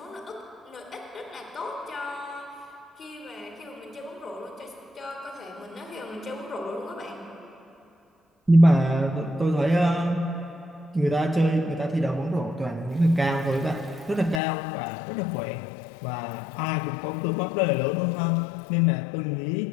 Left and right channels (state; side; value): drops out; right; at 14.4 s